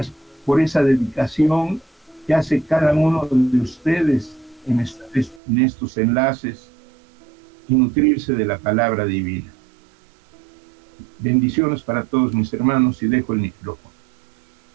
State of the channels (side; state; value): left; drops out; at 5.4 s